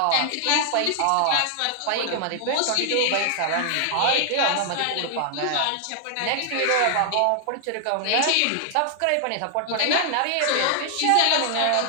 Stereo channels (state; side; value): different; both; correlation 0.00